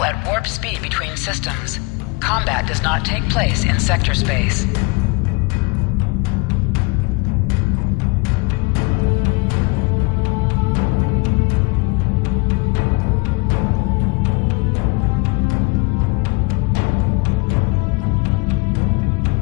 at warp speed between systems. Combat does not take place in sector space.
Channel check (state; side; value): quieter; right; 28.0 dB